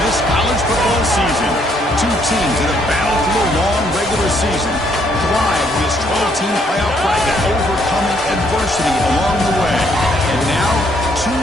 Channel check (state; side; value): normal; both; correlation 0.69